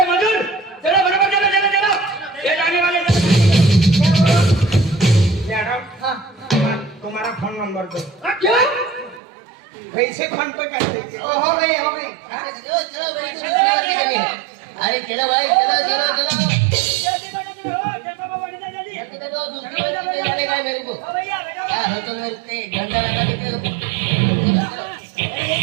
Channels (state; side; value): drops out; left; at 9.2 s